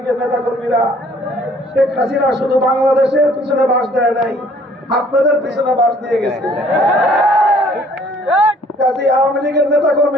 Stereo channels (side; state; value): both; normal; correlation 0.58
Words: নেতা কর্মীরা? শেখ হাসিনা শুধু বাংলাদেশের পিছনে বাস দেয় নাই, আপনাদের পিছনে বাস দিয়ে গেছে। কাজে আওয়ামী লীগের নেতা